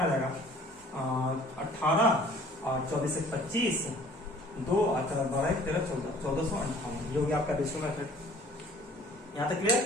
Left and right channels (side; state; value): both; normal; correlation 0.52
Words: आ जाएगा 18 और 24 से 25 2 12 13 14 1458, ये हो गया आपका रेशियो मेथड। यहाँ तक क्लियर।